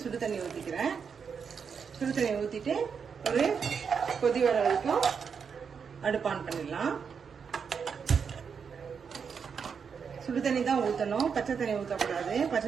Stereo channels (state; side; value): quieter; left; 6.4 dB